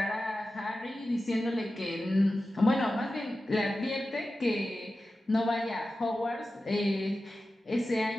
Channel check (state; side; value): normal; both; correlation 0.94